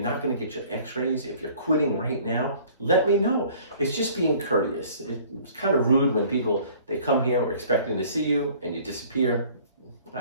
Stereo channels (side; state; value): both; inverted; correlation -0.53